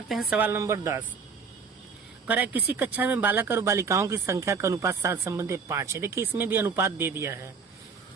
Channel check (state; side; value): quieter; left; 5.5 dB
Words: हैं। सवाल नंबर 10 कह रहा है किसी कक्षा में बालक और बालिकाओं की संख्या का अनुपात 7 संबंधी 5 है। देखिए इसमें भी अनुपात दे दिया है।